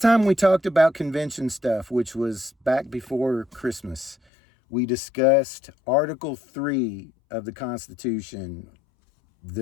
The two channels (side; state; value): right; drops out; at 4.2 s